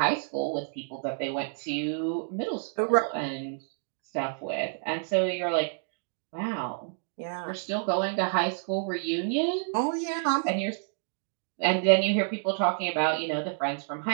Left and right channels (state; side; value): silent; left; digital silence